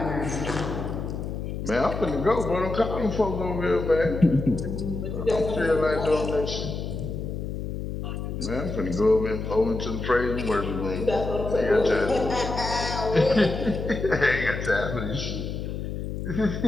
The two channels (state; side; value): noise; left; hum, 5 dB below the sound